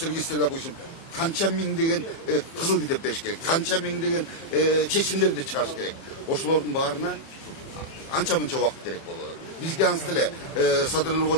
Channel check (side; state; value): right; late; 30 ms